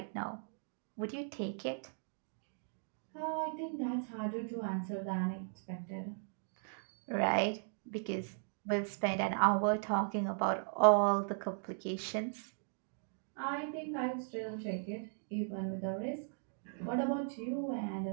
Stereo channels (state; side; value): silent; left; digital silence